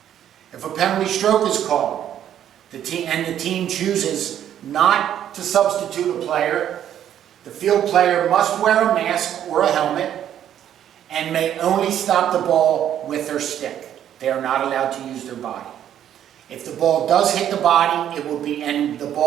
If a penalty stroke is called, the team chooses not to substitute a player, the field player must wear a mask or a helmet and may only stop the ball with their stick. They are not allowed to use their body. If the ball does hit the body, and the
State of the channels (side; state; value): left; quieter; 10.4 dB